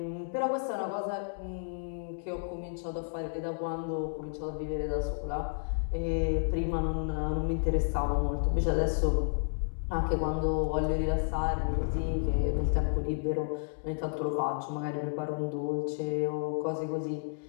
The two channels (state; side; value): silent; right; digital silence